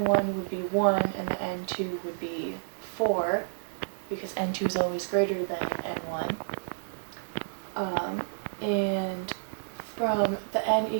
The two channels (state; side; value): silent; left; digital silence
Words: would be 1 and the n2 would be 4, because n2 is always greater than n1. And from the n